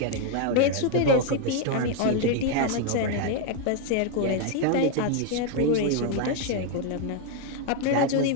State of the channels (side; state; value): both; different; correlation 0.01